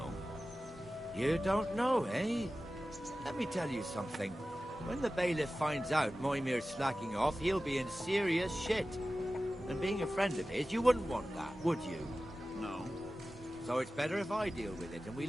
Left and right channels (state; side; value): normal; both; correlation 0.95